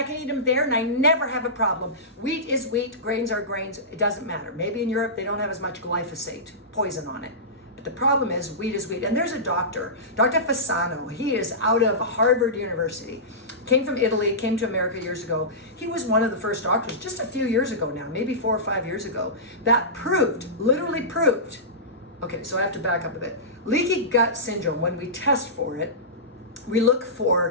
can eat them there and I never have a problem. Wheat is wheat, grains are grains, it doesn't matter. Maybe in Europe they don't have as much glyphosate, poison on it. But the problem is wheat is wheat. And there's a doctor, Dr. Fasano. He is out of Harvard University. Came from Italy, came to America years ago. He was one of the first doctors just a few years ago now, maybe 4 or 5 years ago, that proved, literally proved. Okay, so I have to back up a bit. Leaky gut syndrome, when we test for it, we look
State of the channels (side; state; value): both; normal; correlation -0.19